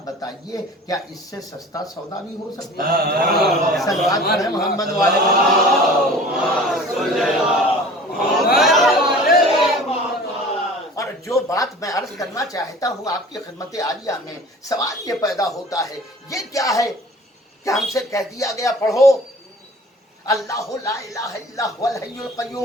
बताइए, क्या इससे सस्ता सौदा भी हो सकता है? सलवात पढ़े मोहम्मद वाले। और जो बात मैं अर्ज करना चाहता हूँ आपकी खिदमत आलिया में, सवाल ये पैदा होता है, ये क्या है कि हमसे कह दिया गया पढ़ो अल्लाह ला इलाहा इल्ला हुवल हय्युल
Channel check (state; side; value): normal; both; correlation 0.44